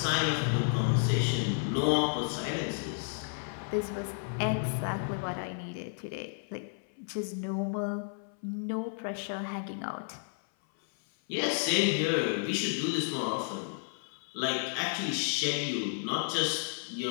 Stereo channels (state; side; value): silent; right; 56 dB below the other